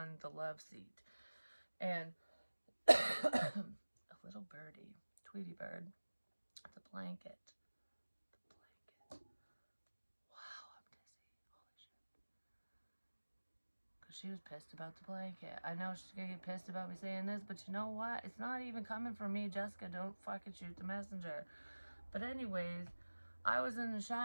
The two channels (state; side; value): inverted; both; correlation -1.00